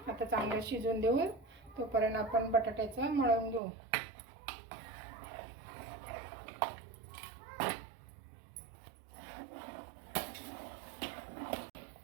आता चांगलं शिजून देऊ. तोपर्यंत आपण बटाट्याचं मळून घेऊ.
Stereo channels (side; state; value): left; drops out; at 3.6 s